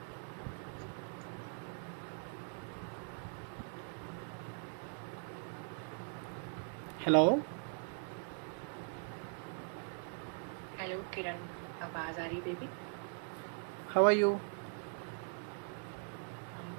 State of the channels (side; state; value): left; silent; 51 dB below the other